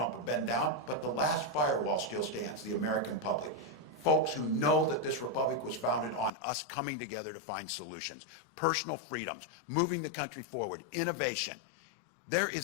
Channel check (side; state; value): right; drops out; at 6.3 s